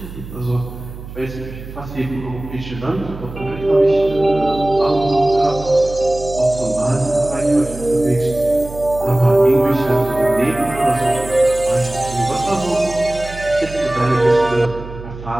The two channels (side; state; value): right; noise; hum, 13 dB below the sound